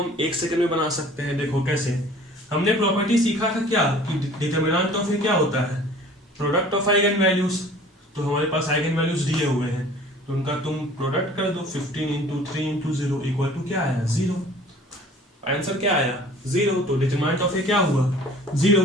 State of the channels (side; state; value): both; normal; correlation 0.49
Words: 1 सेकंड में बना सकते हैं। देखो कैसे, हमने प्रॉपर्टी सीखा था क्या कि डिटर्मिनेंट ऑफ क्या होता है, प्रोडक्ट ऑफ आइगन वैल्यूज। तो हमारे पास आइगन वैल्यूज दिए हुए हैं, तो उनका तुम प्रोडक्ट कर दो, 15 इंटू 3 इंटू 0 इक्वल टू क्या आया, 0। आंसर क्या आया, 0। तो डिटरमिनेंट ऑफ क्या हुआ, 0।